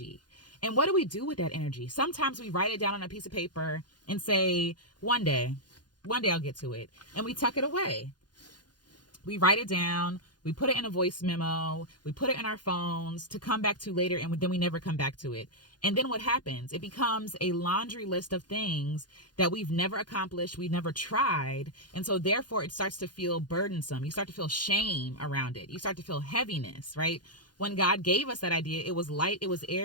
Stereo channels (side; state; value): right; late; 0.70 ms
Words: And what do we do with that energy? Sometimes we write it down on a piece of paper and say, one day I'll get to it. And we tuck it away. We write it down. We put it in a voice memo. We put it in our phones to come back to later, and then we never come back to it. And then what happens? It becomes a laundry list of things that we've never accomplished, we've never tried. And so therefore it starts to feel burdensome. You start to feel shame around it. You start to feel heaviness, right? When God gave us that idea, it was light, it was